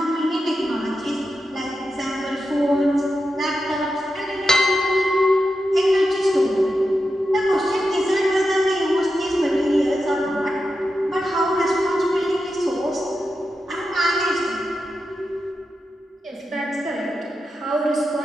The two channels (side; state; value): both; normal; correlation 0.89